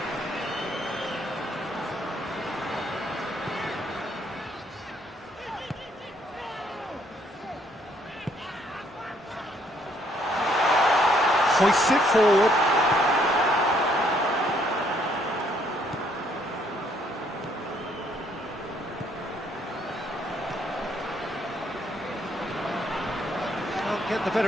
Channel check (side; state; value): both; normal; correlation 0.68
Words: Hoists it forward. Can't get the